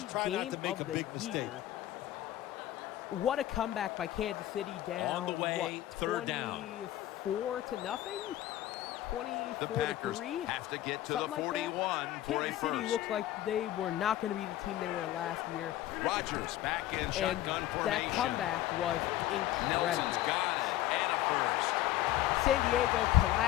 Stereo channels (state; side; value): quieter; right; 14.0 dB